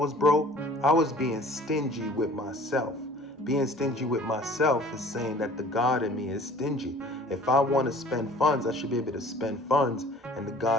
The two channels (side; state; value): both; normal; correlation 0.48